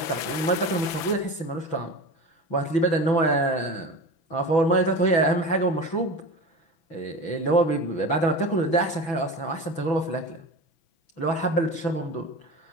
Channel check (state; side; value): late; right; 6.1 ms